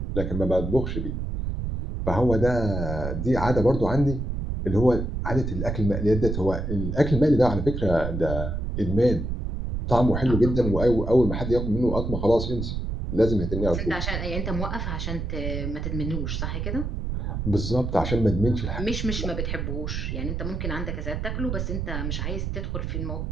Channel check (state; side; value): noise; right; rumble, 3 dB below the sound